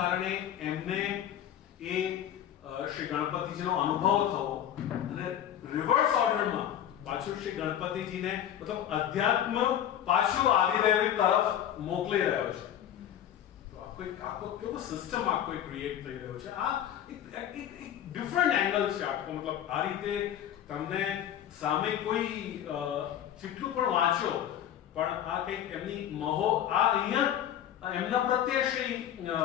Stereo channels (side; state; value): right; quieter; 10.6 dB